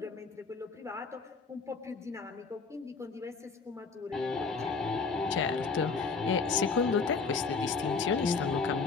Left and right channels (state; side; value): quieter; right; 4.7 dB